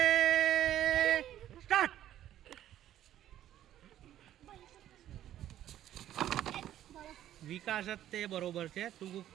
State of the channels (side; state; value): left; quieter; 12.1 dB